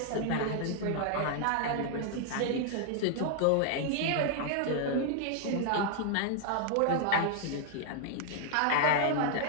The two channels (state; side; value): different; both; correlation 0.00